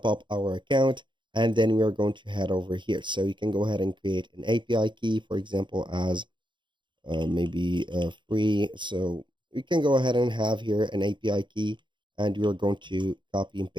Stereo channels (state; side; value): late; left; 0.23 ms